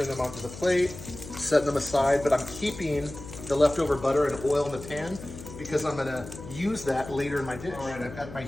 them onto the plate, setting them aside, but I'm keeping the leftover butter and oil in the pan because I'm gonna use that later in my dish. All right, I've got my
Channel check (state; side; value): noise; left; hum, 13 dB below the sound